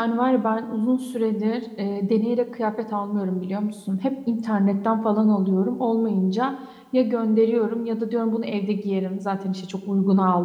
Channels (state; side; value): identical; both; correlation 1.00